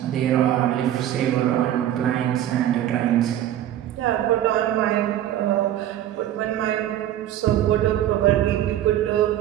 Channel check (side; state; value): left; quieter; 12.0 dB